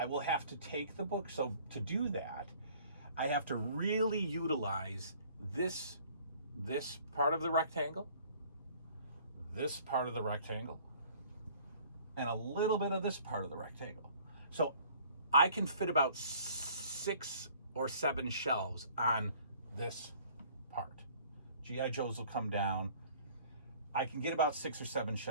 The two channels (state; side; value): inverted; both; correlation -0.54